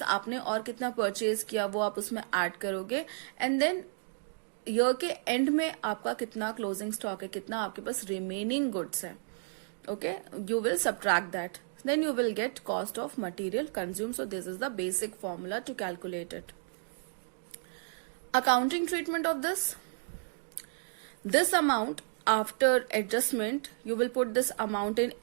आपने और कितना परचेज किया वो आप उसमें ऐड करोगे, एंड देन ईयर के एंड में आपका कितना क्लोजिंग स्टॉक है, कितना आपके पास रिमेनिंग गुड्स है. Okay, you will subtract that. Then you will get cost of material consumed. So this is the basic formula to calculate it. Accounting treatment of this. This amount after adjustment, you will put this amount in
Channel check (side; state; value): left; silent; digital silence